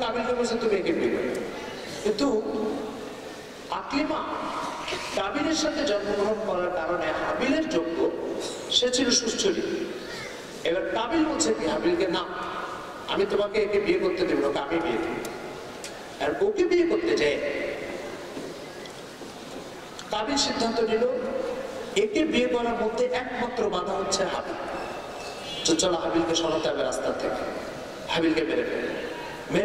কাবিলকে বলছে তুমি একে বিয়ে করবে। কিন্তু আকলিমা কাবিলের সাথে জন্মগ্রহণ করার কারণে হাবিলের যোগ্য, সে ছিল সুস্থলী। এবার কাবিল বলছে কি হাবিলকে, না আমি তোমাকে একে বিয়ে করতে দেব, ওকে আমি বিয়ে দেব। আর ওকে বিয়ে করতে যায় কাবিল সিদ্ধান্ত নিল একে বিয়ে করার মধ্যে একমাত্র বাধা হচ্ছে হাবিল। চলো হাবিলকে সরাতে হবে রাস্তা থেকে, হাবিলকে মেরে ফেলে,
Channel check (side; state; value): both; identical; correlation 1.00